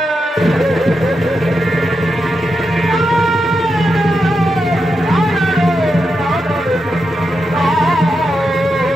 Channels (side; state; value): both; normal; correlation 0.86